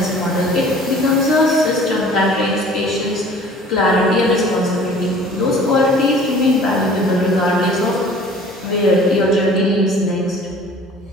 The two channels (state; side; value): normal; both; correlation 0.49